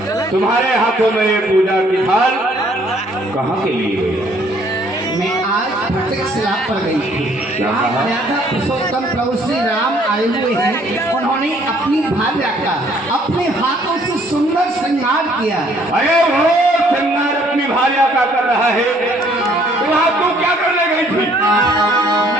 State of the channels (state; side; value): normal; both; correlation 0.62